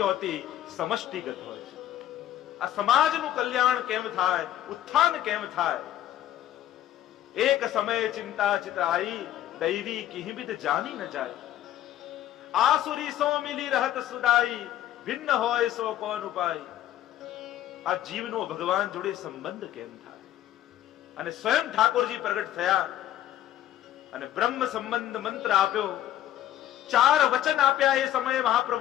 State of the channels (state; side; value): quieter; right; 12.4 dB